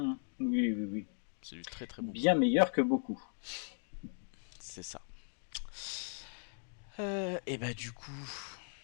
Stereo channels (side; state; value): right; silent; 53 dB below the other